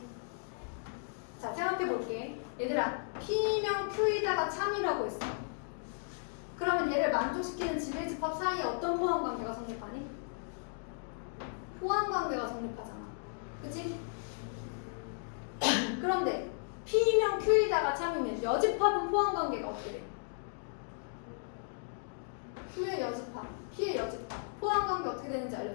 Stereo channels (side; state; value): right; silent; digital silence